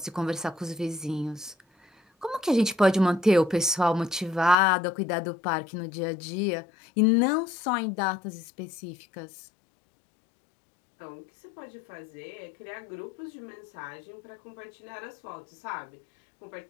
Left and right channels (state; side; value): drops out; right; at 4.5 s